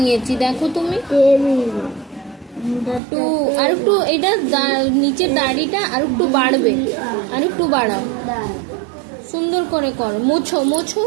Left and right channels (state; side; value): drops out; left; at 3.0 s